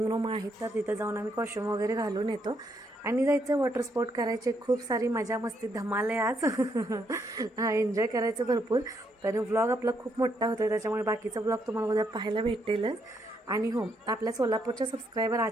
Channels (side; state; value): both; normal; correlation 0.75